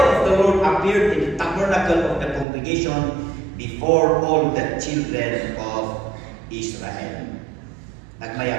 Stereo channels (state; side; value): drops out; left; at 2.5 s